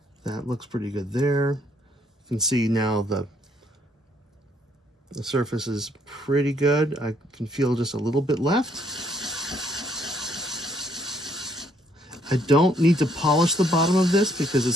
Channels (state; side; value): normal; both; correlation 0.67